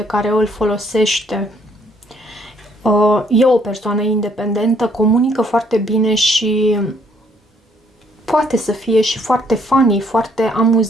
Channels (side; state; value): both; normal; correlation 0.67